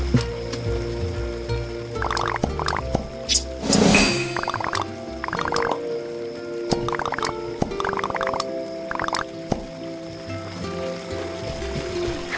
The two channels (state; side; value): identical; both; correlation 1.00